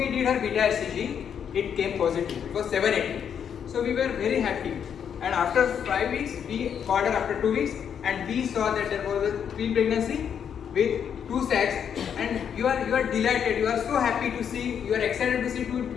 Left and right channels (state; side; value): quieter; right; 8.1 dB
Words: did her beta HCG, it came positive, it was 780. So we were very happy, and after 5 weeks, we called her after 2 weeks and we saw that there was a twin pregnancy with 2 sacs, and you are delighted, you are so happy to see, you are excited to see 2